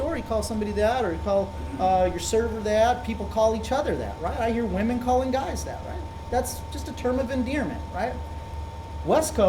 you call somebody that, or you call your server that. People call each other that, right? I hear women calling guys that, right? That's just a term of endearment, right? West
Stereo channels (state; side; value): identical; both; correlation 1.00